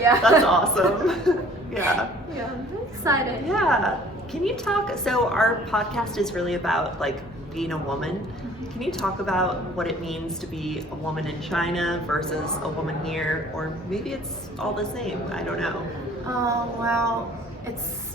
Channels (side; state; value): both; normal; correlation 0.53